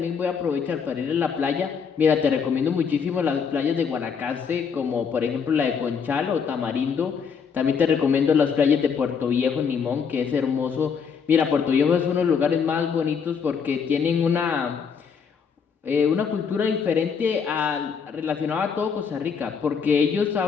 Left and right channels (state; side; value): quieter; right; 6.4 dB